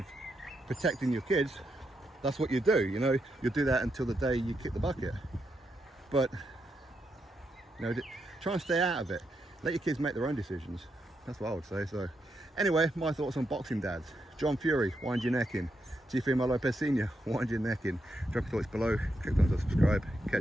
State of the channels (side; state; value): both; normal; correlation 0.82